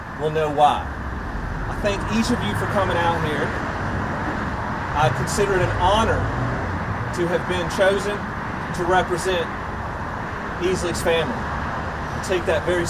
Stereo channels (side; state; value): both; identical; correlation 1.00